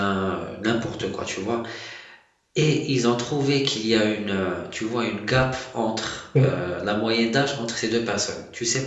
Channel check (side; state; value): both; identical; correlation 1.00